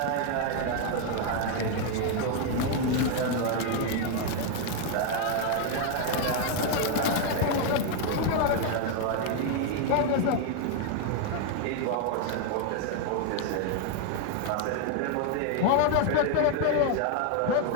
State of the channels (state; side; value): different; both; correlation 0.00